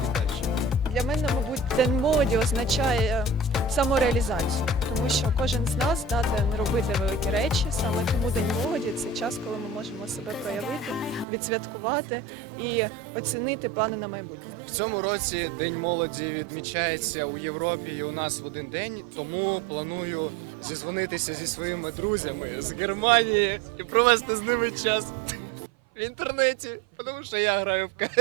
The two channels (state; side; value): drops out; left; at 11.2 s